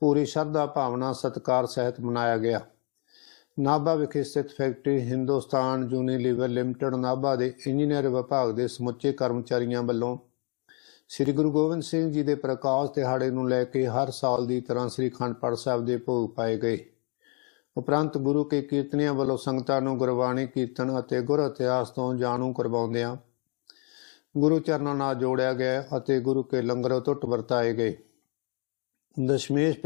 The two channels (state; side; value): quieter; right; 37.1 dB